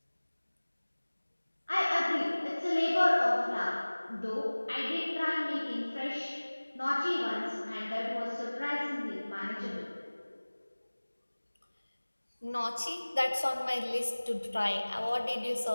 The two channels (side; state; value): both; inverted; correlation -1.00